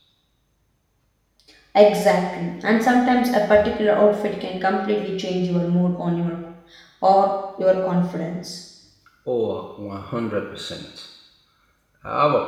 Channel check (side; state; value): both; identical; correlation 1.00